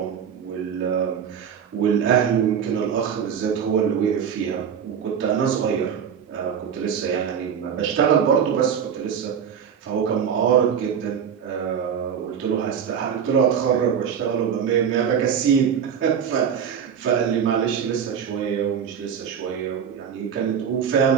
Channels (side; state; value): left; quieter; 7.8 dB